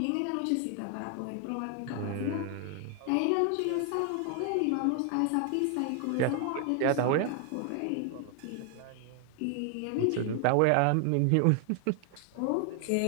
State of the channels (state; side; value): different; both; correlation 0.00